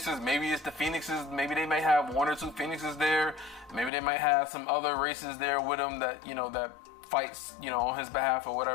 maybe it's the Phoenixes. Maybe they may have 1 or 2 Phoenixes there. Maybe they might have some other races there with him that, you know, that fights, you know, on his behalf or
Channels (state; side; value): drops out; right; at 3.9 s